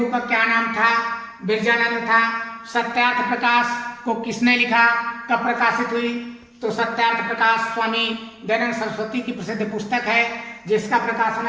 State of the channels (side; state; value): both; identical; correlation 1.00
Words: का क्या नाम था? बिरजानंद था। सत्यार्थ प्रकाश को किसने लिखा? कब प्रकाशित हुई? तो सत्यार्थ प्रकाश स्वामी दयानंद सरस्वती की प्रसिद्ध पुस्तक है, जिसका प्रकाशन